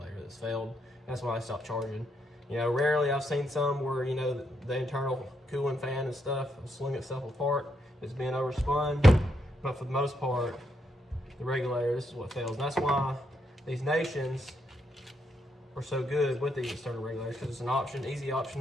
that's failed. That's why I stopped charging. Rarely I've seen some where, the internal cooling fan and stuff will swing itself apart. It's being overspun. But for the most part, the regulator, this is what fails. And that's why these Nations are so good with these external regulators, because it's an option, easy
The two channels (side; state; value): both; normal; correlation 0.79